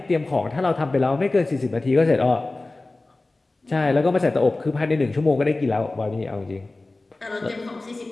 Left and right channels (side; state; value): right; quieter; 3.1 dB